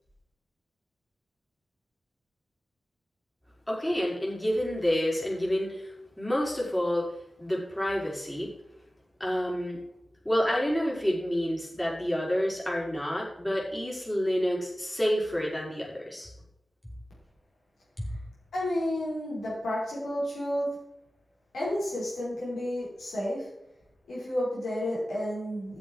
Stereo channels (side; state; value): both; normal; correlation 0.96